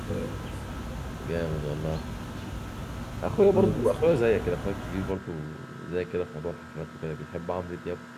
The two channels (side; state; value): both; identical; correlation 1.00